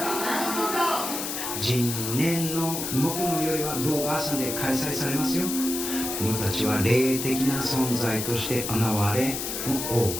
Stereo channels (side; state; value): left; noise; hiss, 4 dB below the sound